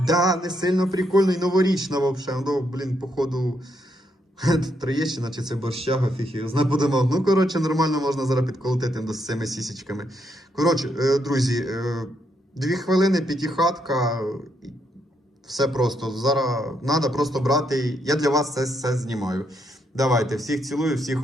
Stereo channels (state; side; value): normal; both; correlation 0.77